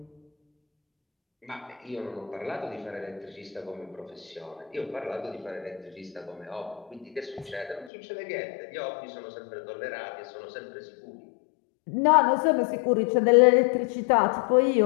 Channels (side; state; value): right; drops out; at 7.9 s